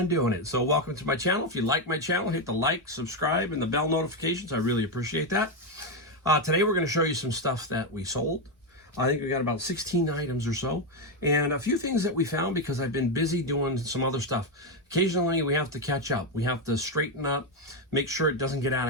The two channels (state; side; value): normal; both; correlation 0.07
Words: doing it. So welcome to my channel. If you like my channel, hit the like, subscribe, and the bell notifications. I really appreciate that. Today we're going to show you some stuff that we sold. I think we got about 16 items or so, and a few things that we found because I've been busy doing some other stuff. Occasionally we have to catch up. We have to straighten up, make sure it doesn't get out